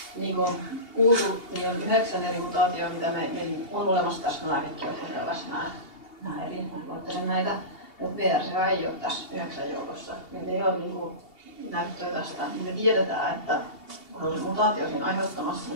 Niin kuin on kuultu, niin on 9 eri mutaatioita, mitä meillä on olemassa tässä lääkekeuhkosyövässä nämä eri. Mä luettelen näitä, mutta VRCA ei ole tässä 9 joukossa. Meillä ei ole näyttöä tästä. Me tiedetään, että kun on se mutaatio siinä aiheuttamassa,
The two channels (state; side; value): late; right; 2.8 ms